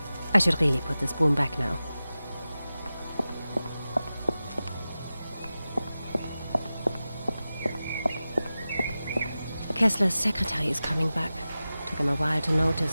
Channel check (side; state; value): both; inverted; correlation -0.95